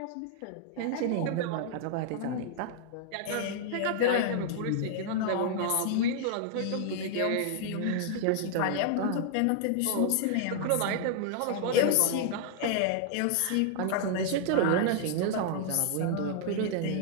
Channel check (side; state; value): both; different; correlation -0.01